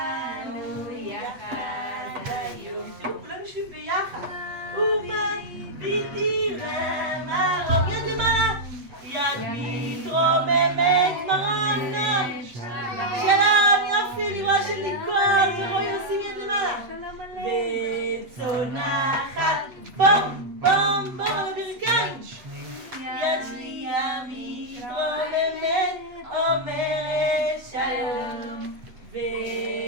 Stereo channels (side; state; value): left; late; 7.9 ms